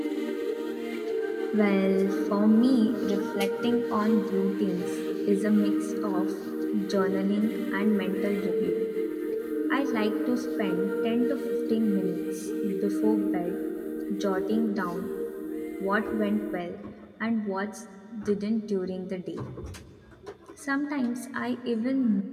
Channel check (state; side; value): identical; both; correlation 1.00